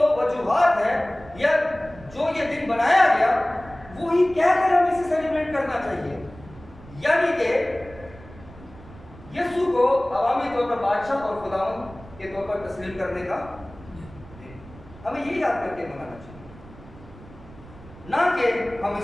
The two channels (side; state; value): right; noise; rumble, 19 dB below the sound